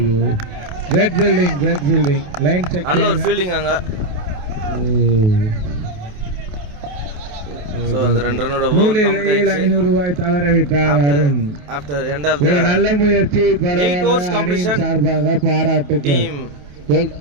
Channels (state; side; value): late; left; 28 ms